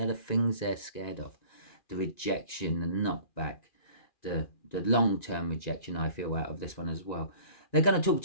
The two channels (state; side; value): late; right; 2.4 ms